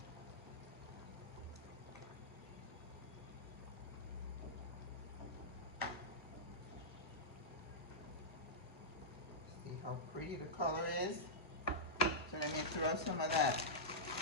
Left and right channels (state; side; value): normal; both; correlation -0.12